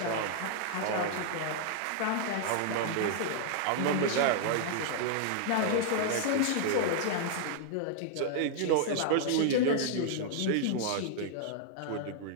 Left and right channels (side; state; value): both; different; correlation -0.01